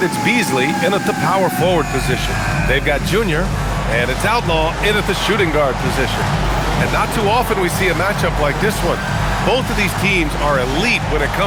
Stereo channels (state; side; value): identical; both; correlation 1.00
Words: it's Beasley in at the power forward position. They've got Junior, and it's Outlaw in at the shooting guard position. And not too often we see a matchup like this one. Both of these teams are elite when it